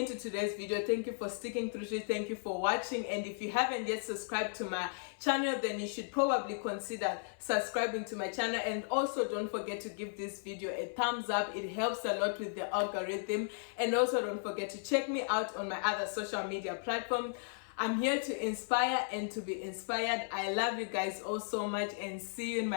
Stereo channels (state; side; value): silent; right; 54 dB below the other